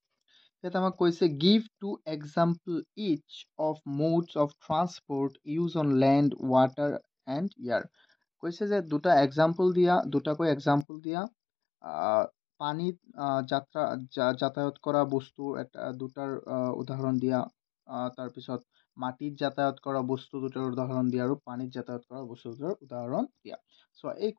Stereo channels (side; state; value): right; drops out; at 10.9 s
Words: Yet আমাক কৈছে give two example each of modes of transport used on land, water and air. কৈছে যে দুটাকৈ এক্সাম্পল দিয়া পানীত যাতায়াত কৰা বস্তু দুটাৰ উদাহৰণ দিয়া, তাৰপিছত মাটিত যাতায়াত কৰা বস্তু দুটাৰ উদাহৰণ দিয়া আৰু পানীত যাতায়াত কৰা বস্তু দুটাৰ উদাহৰণ দিয়া। চোৱা এই